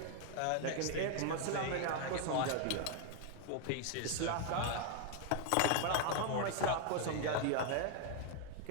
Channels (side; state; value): both; different; correlation 0.00